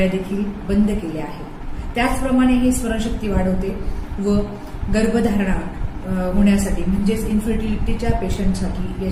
देखील बंद केल्या आहेत. त्याचप्रमाणे हे स्मरणशक्ती वाढवते व गर्भधारणा होण्यासाठी म्हणजेच इन्फर्टिलिटीच्या पेशंटसाठी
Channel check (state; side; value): identical; both; correlation 1.00